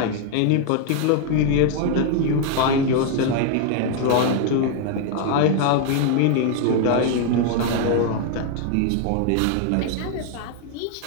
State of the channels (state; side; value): different; both; correlation 0.00